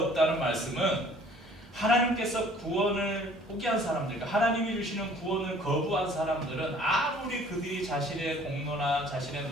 말씀은 하나님께서 구원을 포기한 사람들, 그러니까 하나님이 주시는 구원을 거부한 사람들은 아무리 그들이 자신의 공로나 자신의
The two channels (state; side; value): normal; both; correlation 0.54